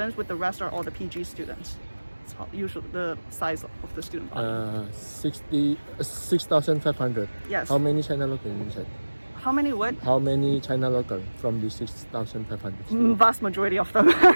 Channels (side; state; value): both; inverted; correlation -1.00